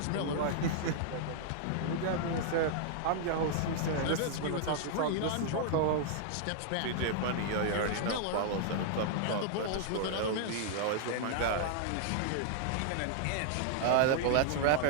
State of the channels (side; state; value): both; different; correlation -0.01